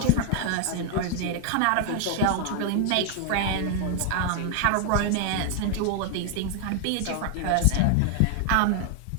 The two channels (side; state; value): both; different; correlation 0.00